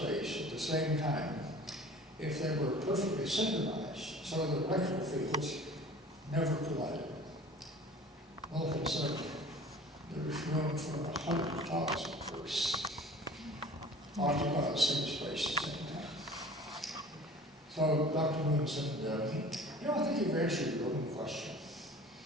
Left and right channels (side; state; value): both; normal; correlation 0.45